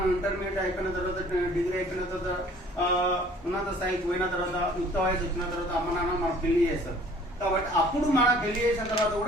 ఇంటర్మీడియట్ అయిపోయిన తర్వాత, డిగ్రీ అయిపోయిన తర్వాత, ఉన్నత స్థాయికి పోయిన తర్వాత, యుక్త వయసు వచ్చిన తర్వాత అమ్మ నాన్న మనకు పెళ్లి చేస్తారు. కాబట్టి అప్పుడు మనం పెళ్లి చేసిన తర్వాత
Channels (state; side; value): normal; both; correlation 0.53